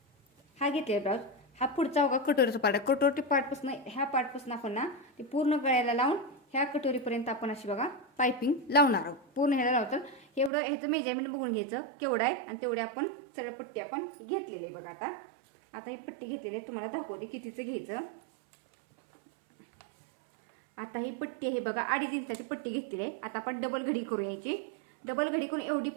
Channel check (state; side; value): drops out; left; at 10.5 s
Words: हा घेतलेला ब्लाऊज, हा पुढचा बघा कटोरीचा पार्ट, कटोरी पार्टपासून ह्या पार्टपासून आपण ना ते पूर्ण गळ्याला लावून ह्या कटोरीपर्यंत आपण अशी बघा पायपिंग लावणार आहोत. पूर्ण ह्याला लावतं एवढं ह्याचं मेजरमेंट बघून घ्यायचं केवढं आहे आणि तेवढे आपण सरळ पट्टी आपण घेतलेली आहे बघा. आता ही पट्टी घेतलेली आहे तुम्हाला दाखवते कितीचं घ्यायचं. आता ही पट्टी आहे बघा 2.5 इंचाची पट्टी घेतलेली आहे. आता आपण डबल घडी करू यायची. डबल घडी करून एवढी